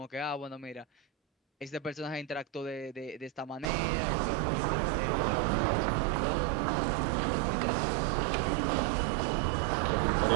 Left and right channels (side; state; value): left; drops out; at 3.7 s